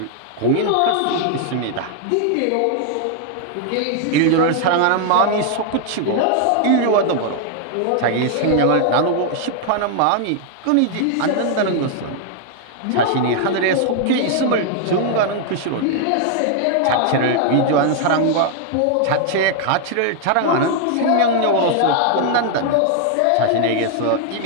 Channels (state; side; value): different; both; correlation 0.00